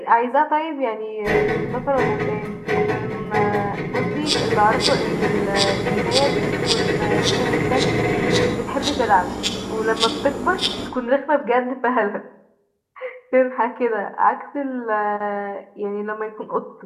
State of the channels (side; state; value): both; identical; correlation 1.00